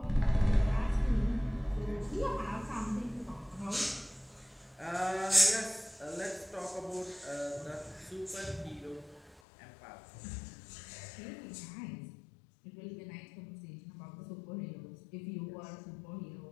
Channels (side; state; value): right; drops out; at 9.4 s